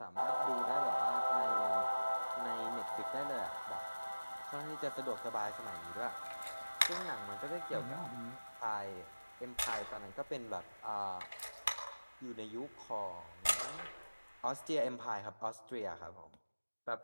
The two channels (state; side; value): inverted; both; correlation -1.00